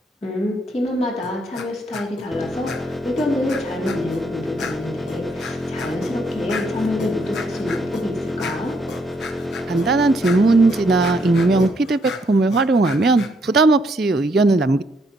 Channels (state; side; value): normal; both; correlation 0.72